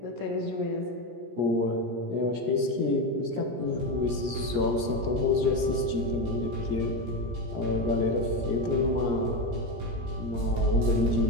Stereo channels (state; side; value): late; left; 17 ms